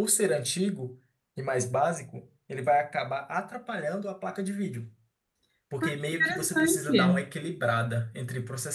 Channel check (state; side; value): identical; both; correlation 1.00